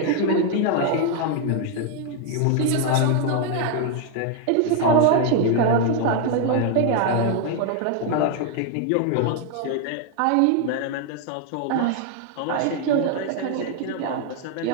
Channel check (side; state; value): both; different; correlation 0.01